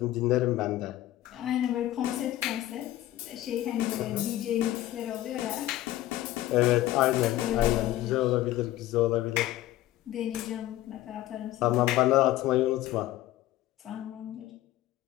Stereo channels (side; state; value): right; quieter; 14.9 dB